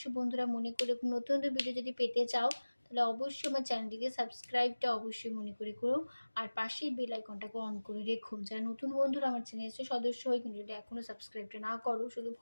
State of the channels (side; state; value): both; inverted; correlation -1.00